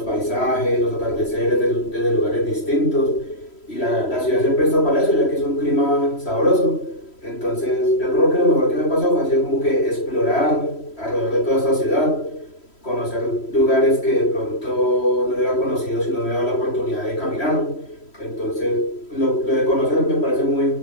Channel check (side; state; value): right; late; 3.1 ms